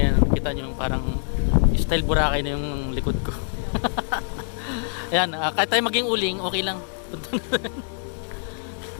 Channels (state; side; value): silent; right; digital silence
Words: kita nyo parang style Boracay na yung likod ko. Ayan, kahit tayo maging uling, okay lang.